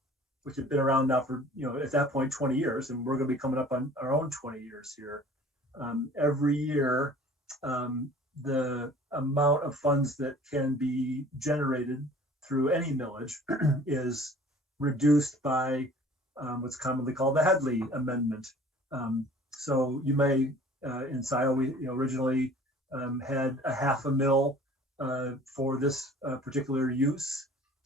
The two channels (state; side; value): normal; both; correlation 0.49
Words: which had been around now for, at that point, 20 years, and we're going to be coming up on our own 20 years here. Every year, the amount of funds that can be generated through any millage is reduced by what's commonly called the Headley Amendment. So you may, in Scio, we originally had a $500,000 for this particular use.